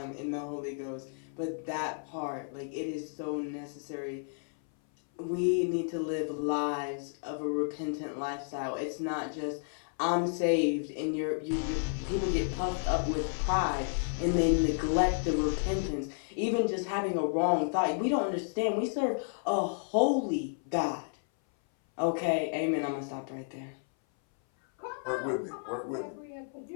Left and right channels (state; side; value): silent; right; 56 dB below the other